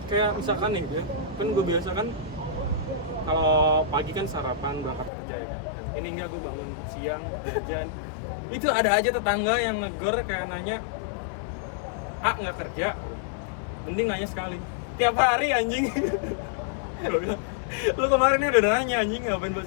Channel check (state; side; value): drops out; right; at 5.1 s